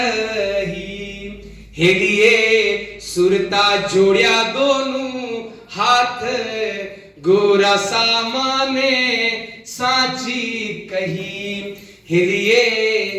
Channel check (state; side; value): identical; both; correlation 1.00